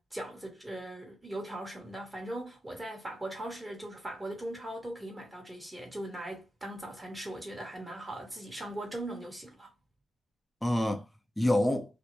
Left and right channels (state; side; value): normal; both; correlation 0.92